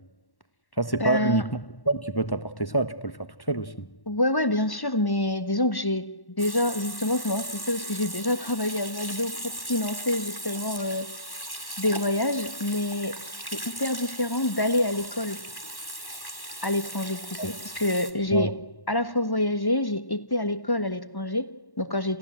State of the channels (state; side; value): late; right; 1.1 ms